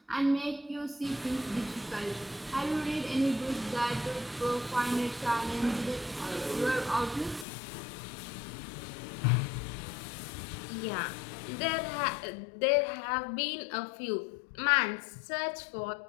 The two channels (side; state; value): right; drops out; at 7.5 s